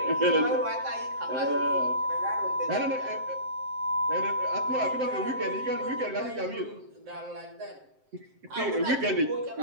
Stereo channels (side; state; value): left; late; 7.6 ms